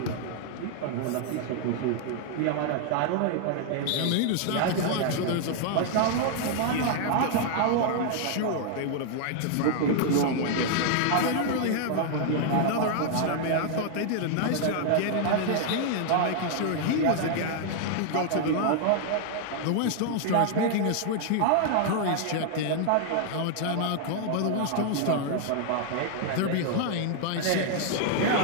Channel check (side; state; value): both; different; correlation 0.00